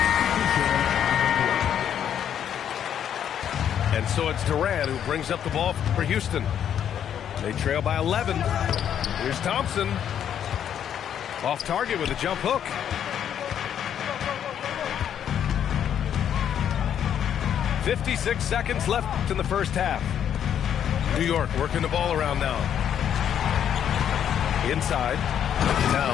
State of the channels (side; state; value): right; quieter; 9.3 dB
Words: And so it's Durant who brings up the ball for Houston. They trail by 11. Here's Thompson. Off target with a jump hook. "56 seconds left in the first half. New York working the ball around now. Inside.